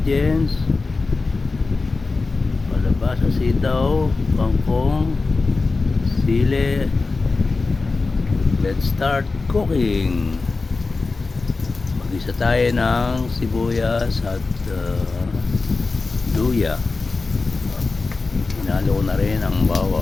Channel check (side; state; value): right; quieter; 3.9 dB